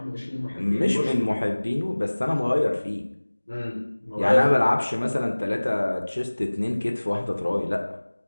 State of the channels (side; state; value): both; inverted; correlation -1.00